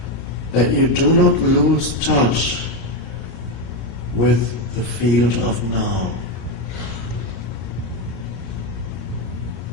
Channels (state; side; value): late; right; 33 ms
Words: that you do not lose touch with the field of now,